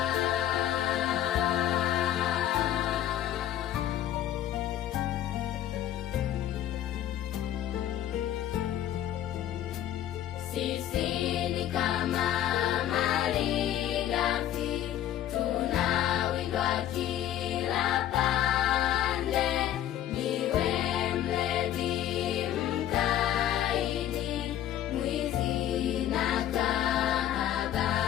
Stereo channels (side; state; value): right; quieter; 11.8 dB